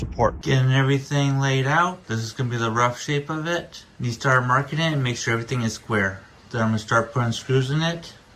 Getting everything laid out. This is going to be the rough shape of it. You start marking it and make sure everything is square. Then I'm going to start putting screws in it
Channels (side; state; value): both; identical; correlation 1.00